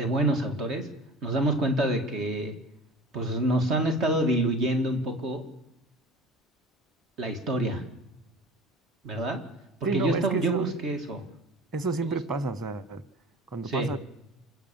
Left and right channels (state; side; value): normal; both; correlation 0.39